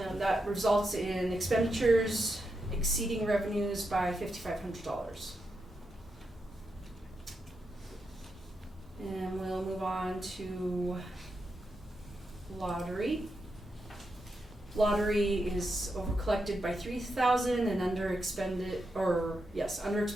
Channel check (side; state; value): both; normal; correlation 0.85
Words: results in expenditures exceeding revenues by $5,500. And we'll move on to lottery. Lottery is over collected by $3,000 and under expended by